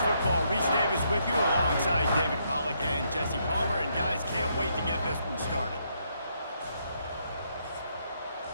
Reese Davis with you alongside David Pollack and Jesse Palmer. And guys, can't wait to get this one started.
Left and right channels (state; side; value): inverted; both; correlation -0.75